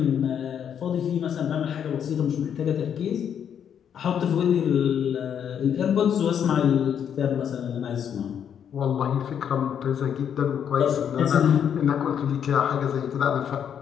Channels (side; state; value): right; quieter; 8.5 dB